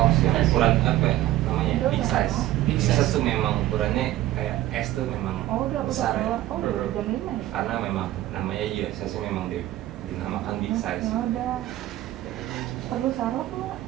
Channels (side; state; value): left; quieter; 14.9 dB